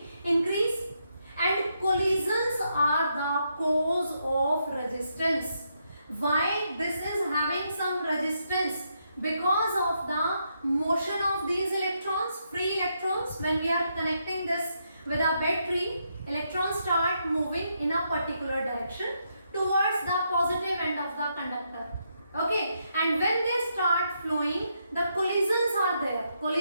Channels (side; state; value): both; inverted; correlation -0.79